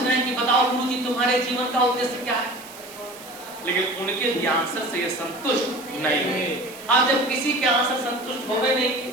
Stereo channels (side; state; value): right; noise; hiss, 17 dB below the sound